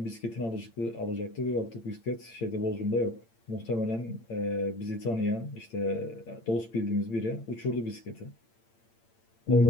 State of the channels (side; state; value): right; late; 8.8 ms